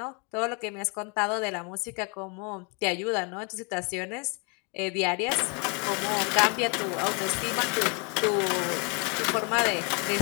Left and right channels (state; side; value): quieter; right; 33.9 dB